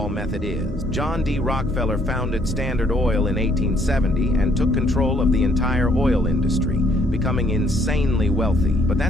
method is. John D. Rockefeller founded Standard Oil in 1870 and took control of the entire oil industry, becoming insanely wealthy. But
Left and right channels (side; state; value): both; normal; correlation 0.66